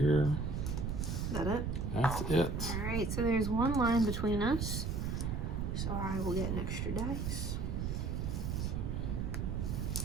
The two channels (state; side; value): noise; right; rumble, 1 dB below the sound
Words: Is that it? That's it. All right, so there's 1 line between us. So I will get an extra dice.